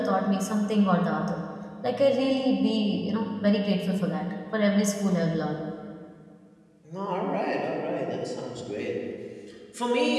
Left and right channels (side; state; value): both; identical; correlation 1.00